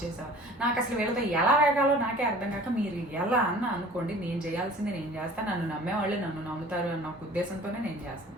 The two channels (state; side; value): normal; both; correlation 0.46